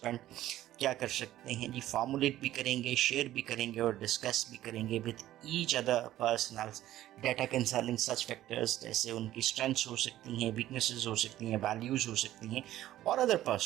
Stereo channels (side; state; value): left; quieter; 13.9 dB